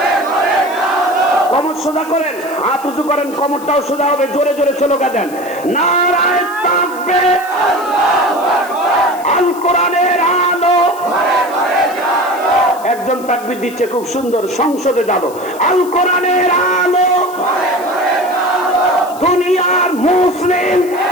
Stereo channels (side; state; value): left; noise; hiss, 19 dB below the sound